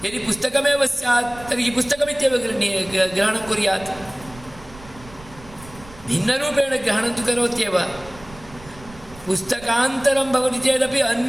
यदि पुस्तकमेव स्यात् तर्हि पुस्तकमित्येव ग्रहणं कुर्यात्, भिन्नरूपेण ग्रहणं तु करोत्येव। पुस्तकान्तरं भवति चेदपि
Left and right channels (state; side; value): noise; right; rumble, 19 dB below the sound